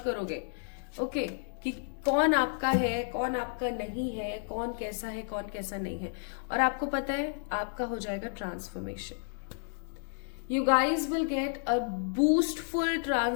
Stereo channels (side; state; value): right; silent; digital silence